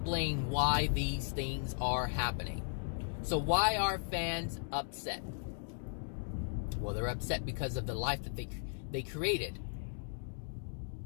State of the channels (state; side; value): silent; right; digital silence